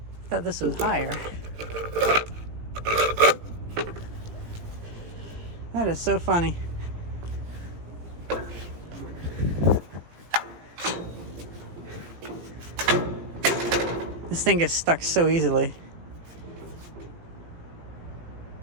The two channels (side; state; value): left; late; 18 ms